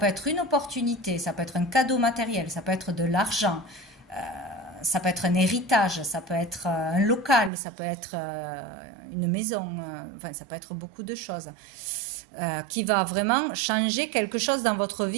être une opportunité, ça peut être un cadeau matériel, ça peut être de l'argent, ça peut être un héritage, ça peut être un local, ça peut être une maison, enfin ça peut être beaucoup de choses. Qui va vraiment changer quelque chose dans votre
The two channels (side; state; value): left; drops out; at 7.5 s